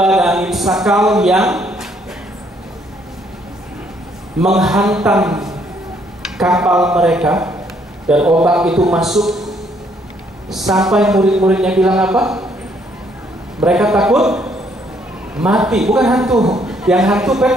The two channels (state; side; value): normal; both; correlation 0.68